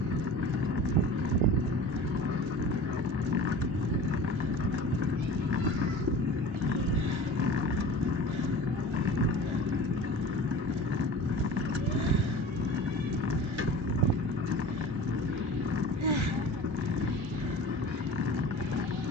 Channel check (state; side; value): late; left; 1.3 ms